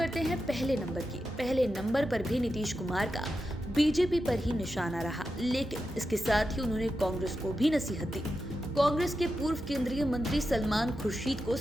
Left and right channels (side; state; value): right; noise; hum, 19 dB below the sound